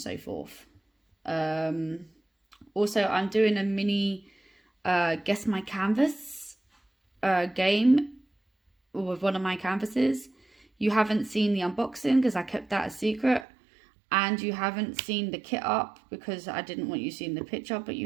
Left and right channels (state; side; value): drops out; left; at 13.5 s